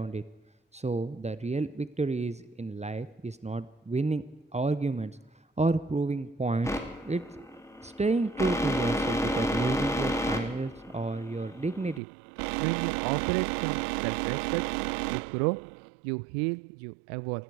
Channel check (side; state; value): left; drops out; at 12.0 s